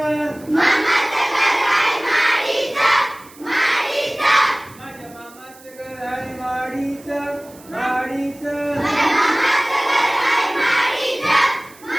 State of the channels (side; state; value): right; noise; hiss, 24 dB below the sound